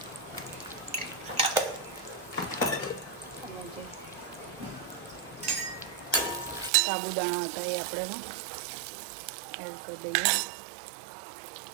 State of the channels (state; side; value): drops out; left; at 6.7 s